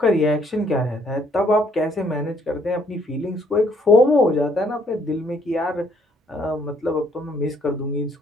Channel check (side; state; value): both; normal; correlation 0.66